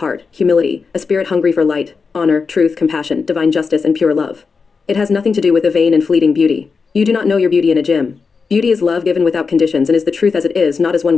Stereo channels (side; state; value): right; quieter; 5.0 dB